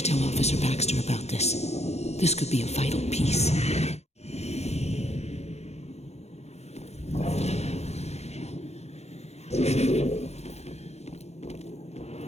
tell Officer Baxter about this. This could be a vital piece.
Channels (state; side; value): late; right; 0.31 ms